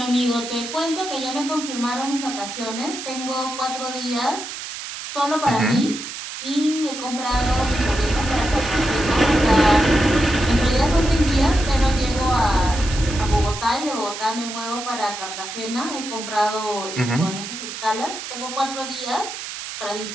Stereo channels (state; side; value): noise; right; hiss, 9 dB below the sound